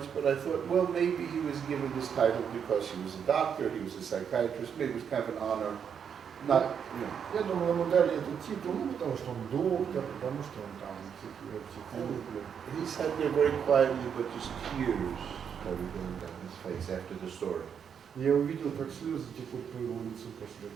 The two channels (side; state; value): left; quieter; 7.5 dB